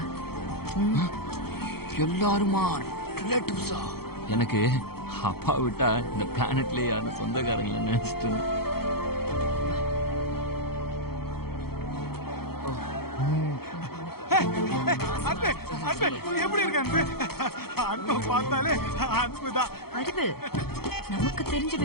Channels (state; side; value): late; right; 0.95 ms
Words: எல்லாருமா ரிலேட்டிவ்ஸா? எனக்கு அப்பா விட்டா இந்த பிளானட்ல யாரும் சொந்தக்காரங்கள நினைச்சிட்டு இருந்தேன். அன்பு அன்பு எப்படி இருக்க அன்பு? அன்பு பார்த்தாலே அன்புதான். அறிவு, நமக்கு தெரிஞ்ச